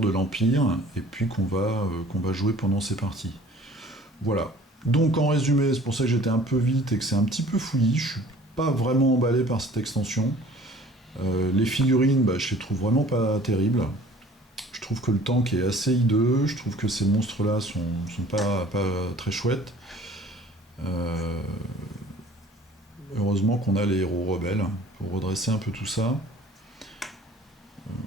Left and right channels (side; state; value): both; normal; correlation 0.50